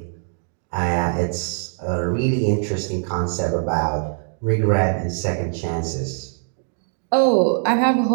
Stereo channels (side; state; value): left; silent; 64 dB below the other